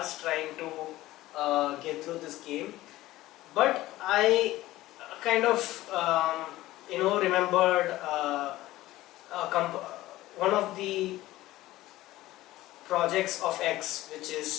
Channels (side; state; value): right; quieter; 16.6 dB